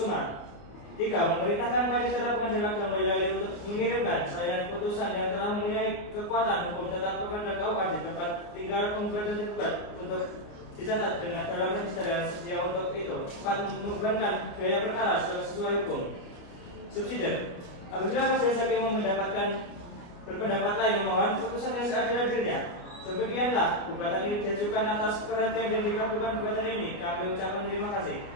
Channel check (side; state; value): right; late; 29 ms